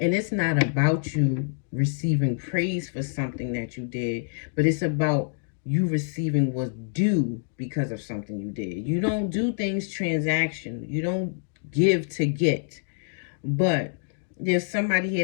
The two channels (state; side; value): silent; right; digital silence